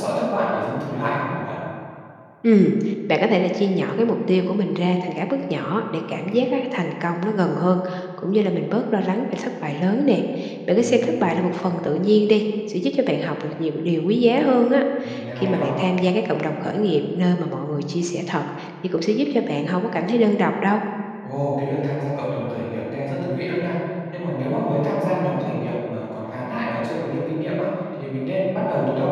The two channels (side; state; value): both; identical; correlation 1.00